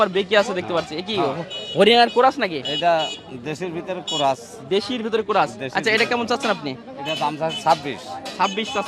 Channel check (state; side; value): identical; both; correlation 1.00